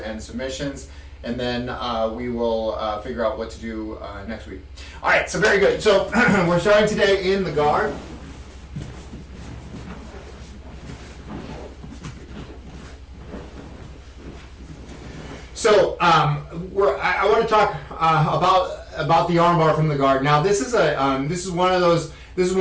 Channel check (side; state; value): both; identical; correlation 1.00